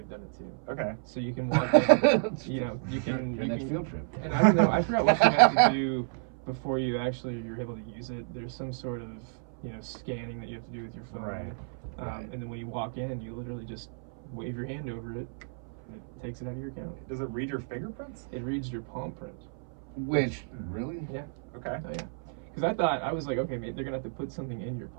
done it too. Okay. So you can walk in, you know, you can your next field trip. And I don't know, I forgot what you have to do before you're able to use it. There's some sort of, you know, scanning that you have to do with your phone. And then when you walk in, you literally just wave your hand over it, and it takes it out of your account. Does it read your fingerprints? It reads your palm print. Which, really? Yeah. Okay. Oh, yeah. Because I was like, okay, they're gonna have to put something in your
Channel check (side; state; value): left; silent; 57 dB below the other